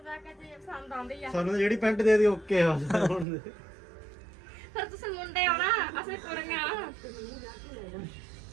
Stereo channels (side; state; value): left; drops out; at 3.2 s